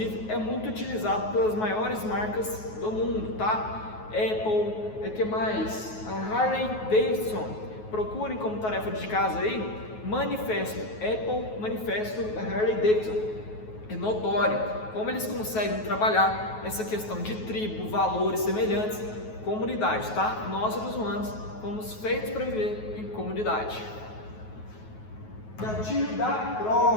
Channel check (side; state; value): right; late; 9.3 ms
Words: é muito utilizado pelas maiores marcas do mundo, tá? Apple, que mais? A Harley Davidson. Procurem como tarefa de casa aí, manifesto Apple, manifesto da Harley Davidson. É notório como eles conseguem trabalhar essa questão de tribo, valores semelhantes, comunidade, tá? Nós, seres humanos, fomos feitos para viver em comunidade. Gatilho da